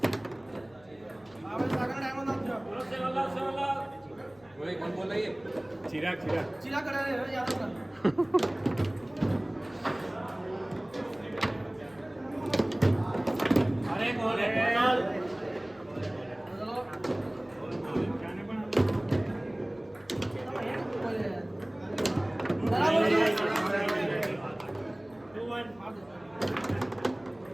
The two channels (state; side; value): noise; left; hum, 28 dB below the sound